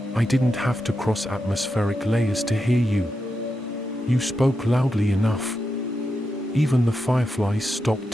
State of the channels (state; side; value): normal; both; correlation 0.87